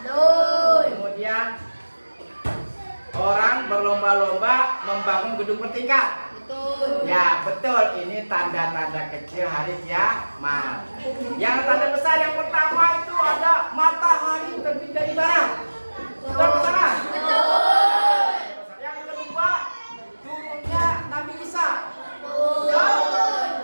Kemudian orang berlomba-lomba membangun gedung bertingkat. Betul. Ya, betul. Ini tanda-tanda kecil hari kiamat. Yang tanda besar yang pertama itu ada matahari terbit dari barat. Betul, betul.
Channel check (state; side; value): inverted; both; correlation -1.00